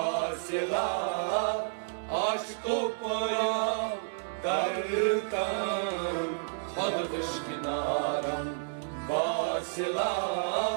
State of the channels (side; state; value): left; silent; 57 dB below the other